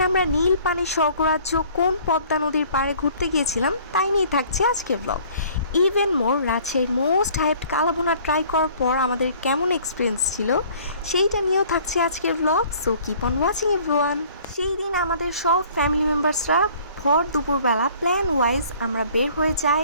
আমরা নীল পানির স্বর্গরাজ্য কোন পদ্মা নদীর পাড়ে ঘুরতে গিয়েছিলাম তাই নিয়ে থাকছে আজকের ব্লগ। ইভেন মোর রাজশাহীর মোস্ট হাইপড কালাভুনা ট্রাই করার পর আমাদের কেমন এক্সপিরিয়েন্স ছিল সেইটা নিয়েও থাকছে আজকের blog. So keep on watching everyone. সেই দিন আমাদের সব ফ্যামিলি মেম্বার্সরা ভর দুপুরবেলা প্ল্যান ওয়াইজ আমরা বের হয়ে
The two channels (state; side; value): inverted; both; correlation -0.53